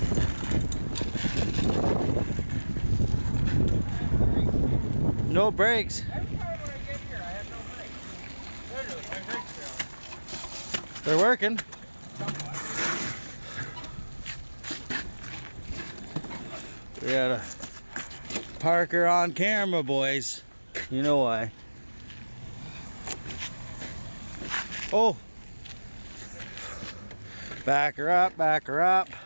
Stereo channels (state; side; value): inverted; both; correlation -1.00